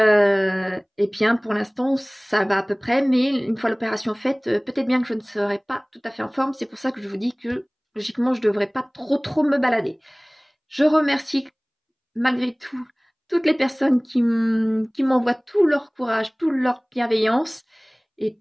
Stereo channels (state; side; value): identical; both; correlation 1.00